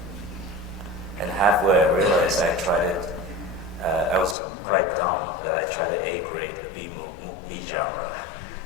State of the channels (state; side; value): drops out; right; at 4.4 s